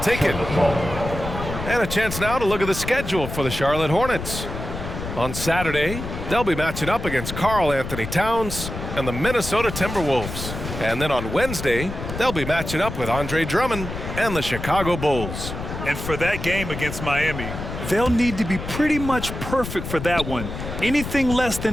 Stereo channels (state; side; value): noise; left; rumble, 7 dB below the sound